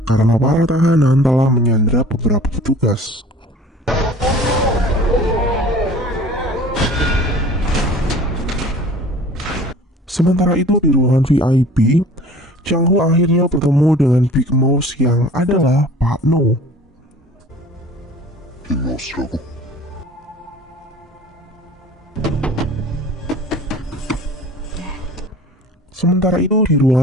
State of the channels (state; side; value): normal; both; correlation 0.45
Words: karena para tahanan telah menyandra beberapa petugas. Sementara itu di ruangan VIP, Chang Ho akhirnya bertemu dengan Big Mouse yang adalah Pak No. 빅마우스라고? Sementara itu di